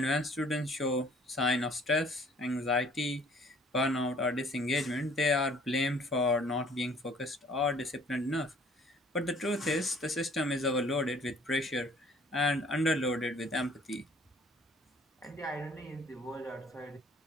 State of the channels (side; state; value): both; normal; correlation 0.57